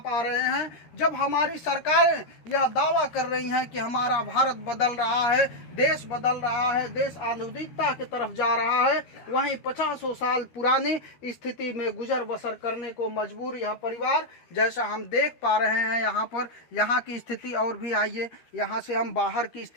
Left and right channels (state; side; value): late; right; 13 ms